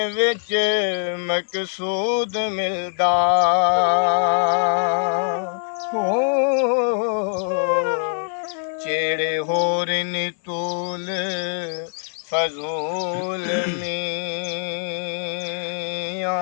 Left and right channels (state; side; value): silent; right; 60 dB below the other